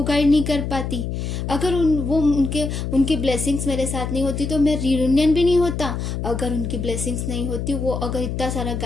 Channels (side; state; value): left; noise; hum, 4 dB below the sound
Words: गाइड नहीं कर पाती। अगर उनकी ब्लेसिंग्स मेरे साथ नहीं होती तो मैं रियूनियन भी नहीं होता। अगर उनकी ब्लेसिंग्स नहीं होती, वो अगर इतना सारा